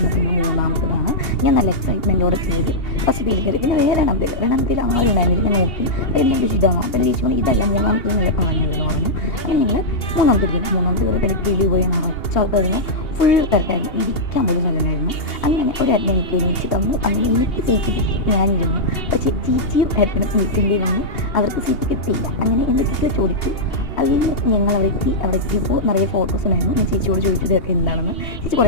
പിന്നെ 3ാമത്തതാണ്. ഞാൻ നല്ല എക്സൈറ്റ്മെൻറ്റോടെ കയറി. ഫസ്റ്റ് കയറി. പിന്നെ വേറെ രണ്ടാമത്തേൽ ആരും ഉണ്ടായിരുന്നില്ല. ഞാൻ നോക്കി എല്ലാം ചേച്ചി ഇതാണോ? അപ്പോൾ എൻ്റെ ചേച്ചി പറഞ്ഞു ഇതല്ല 3ാമത്തേൽ നല്ല പറഞ്ഞതെന്ന് പറഞ്ഞു. അങ്ങനെ ഞങ്ങൾ 3ാമത്തെ കയറി പോയി നിറച്ചാൾക്കായിരുന്നു. ഫുൾ തിരക്കായിരുന്നു. ഇരിക്കാൻ പോലും സ്ഥലമായിരുന്നു. അങ്ങനെ ഒരു ഏട്ടൻ എനിക്ക് എണീച്ച് തന്നു. അങ്ങനെ എനിക്ക് സീറ്റ് കിട്ടി. ഞാനിരുന്നു. പക്ഷേ ചേച്ചിയും ഏട്ടനും നിൽക്കേണ്ടി വന്നു. അവർക്ക് സീറ്റ് കിട്ടിയില്ല. അങ്ങനെ എൻ്റെ ചേച്ചി ചോദിച്ചു. അതിൽ ഞങ്ങൾ അവിടെ എത്തിയപ്പോൾ നിറയെ ഫോട്ടോസ് ഉണ്ടായിരുന്നു. ഞാൻ ചേച്ചിയോട് ചോദിച്ചു ഇതൊക്കെ എന്താണെന്ന്. ചേച്ചി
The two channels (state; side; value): late; right; 2.8 ms